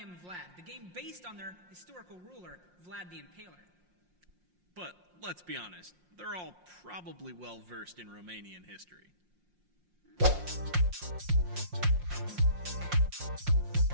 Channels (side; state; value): left; late; 5.6 ms